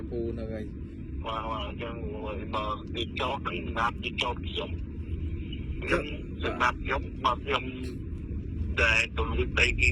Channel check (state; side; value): identical; both; correlation 1.00